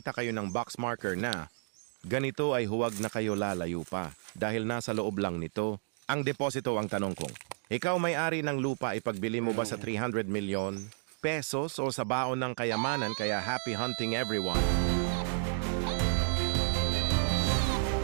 kayo ng box marker na ganito ay huwag na kayo lalayo pa dahil nasa loob lang nito. Ang deposito ang tanong kong, ikaw may-ari ng lupa ipagbili mo ba sa 300 million pesos o sa baon ng kayamanan kaya happy hunting everyone?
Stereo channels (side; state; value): left; silent; digital silence